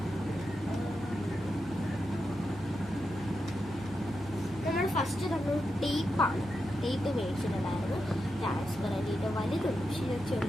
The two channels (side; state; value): both; normal; correlation 0.87